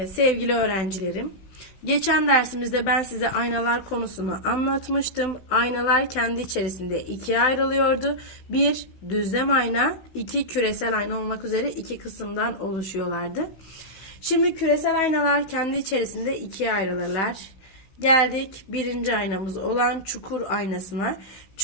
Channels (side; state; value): right; late; 16 ms